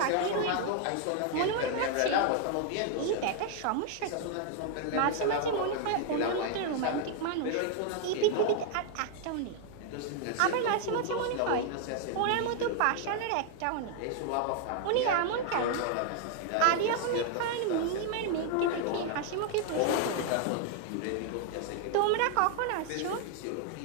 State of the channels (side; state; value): both; different; correlation 0.00